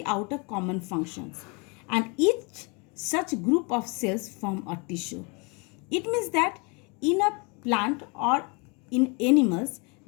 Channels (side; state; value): right; quieter; 31.2 dB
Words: out a common functions, and each such group of cells form a tissue. It means that in a plant or in animals,